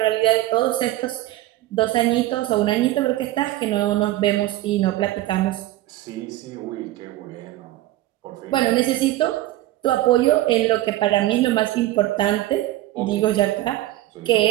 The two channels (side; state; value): left; quieter; 15.6 dB